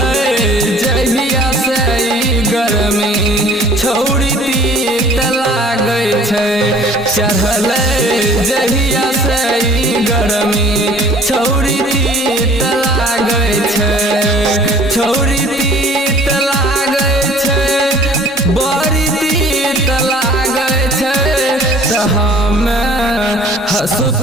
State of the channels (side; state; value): both; normal; correlation 0.51